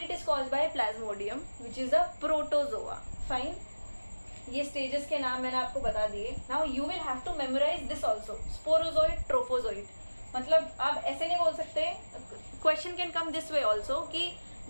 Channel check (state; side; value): inverted; both; correlation -1.00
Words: it is caused by plasmodium which is a protozoa. Fine, ये स्टेजेस के नाम मैंने आपको बता दिए। Now you will have to memorise this also, sporozoite, trophozoite. मतलब आप ऐसे नहीं बोल सकते, question can come this way also कि